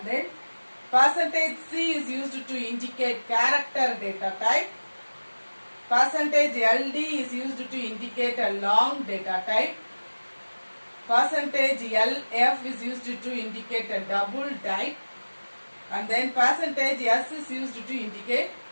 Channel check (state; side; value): inverted; both; correlation -1.00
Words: then percentage C is used to indicate character data type. Percentage LD is used to indicate a long data type. Percentage LF is used to indicate a double type. And then percentage S is used to indicate